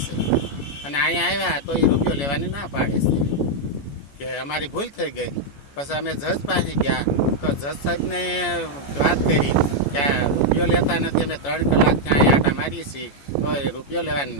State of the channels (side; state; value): right; late; 14 ms